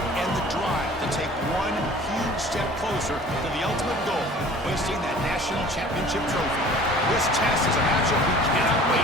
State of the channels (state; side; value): normal; both; correlation 0.47